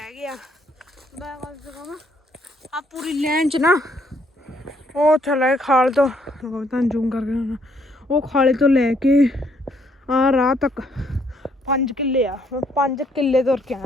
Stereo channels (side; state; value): both; normal; correlation 0.69